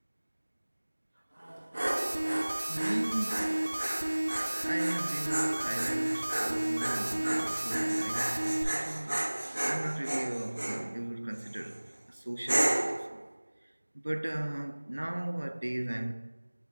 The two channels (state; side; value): inverted; both; correlation -1.00